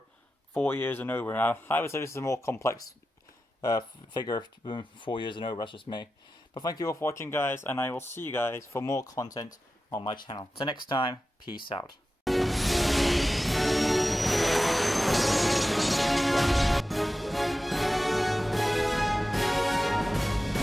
4 years and over. Now, I would say this is a more complex figure than 4 years and over, that's just me. But thank you all for watching, guys, and I will see you guys for more content on my channel. Till next time, peace out.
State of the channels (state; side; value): normal; both; correlation 0.93